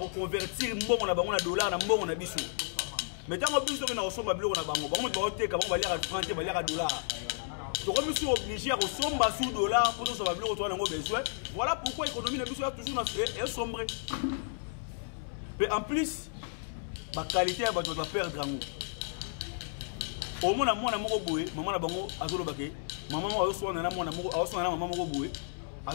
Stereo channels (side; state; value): right; silent; 56 dB below the other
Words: convertir mbongo na dollar na mbongo na bisou. Mais tant que bisou na osomba biloko na bango, on va teka, on va lire à franc, on va lire à dollar. Donc, je suis obligé à ressembler sous dollar pour nous savoir besoin. Voilà pourquoi l'économie est toujours sombre. Mais en plus, la qualité va perdre. Au moins, maman a bango azolo bake. Maman a reçu un maman a boué.